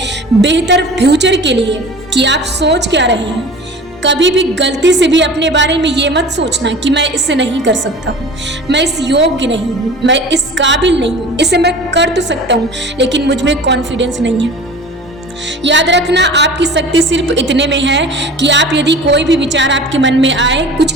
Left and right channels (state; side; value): normal; both; correlation 0.40